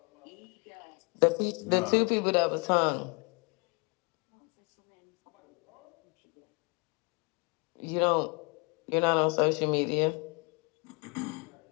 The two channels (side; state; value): right; quieter; 31.7 dB